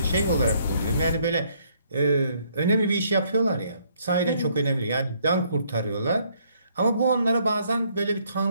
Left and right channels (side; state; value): both; inverted; correlation -0.67